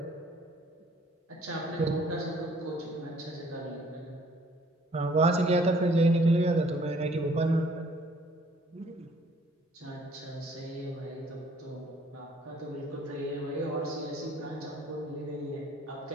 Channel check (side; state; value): both; normal; correlation 0.59